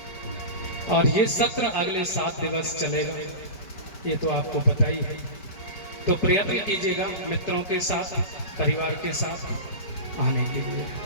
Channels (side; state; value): right; late; 5.1 ms